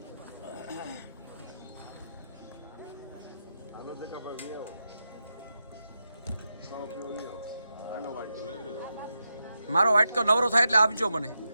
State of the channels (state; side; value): inverted; both; correlation -0.87